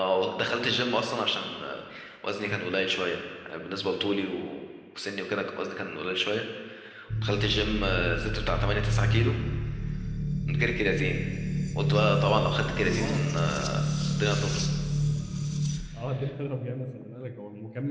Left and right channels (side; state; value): both; identical; correlation 1.00